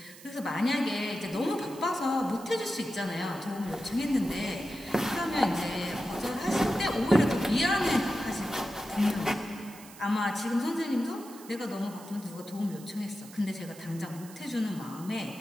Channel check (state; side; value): noise; right; hiss, 19 dB below the sound